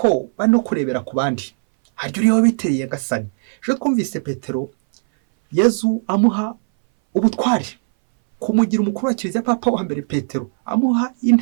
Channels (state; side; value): silent; left; 62 dB below the other